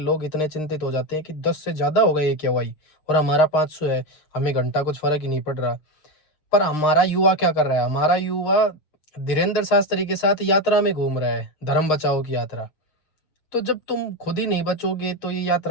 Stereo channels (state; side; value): late; right; 6.5 ms